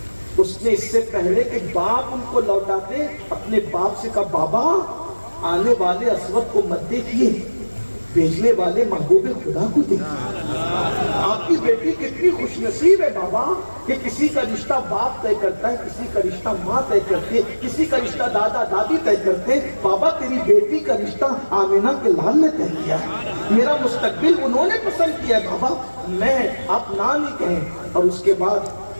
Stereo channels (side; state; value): both; inverted; correlation -1.00